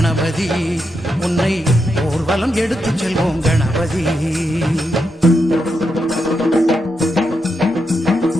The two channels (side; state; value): both; normal; correlation 0.84